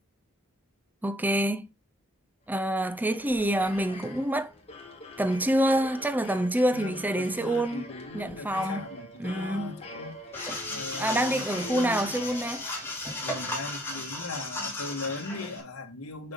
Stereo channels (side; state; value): both; normal; correlation 0.70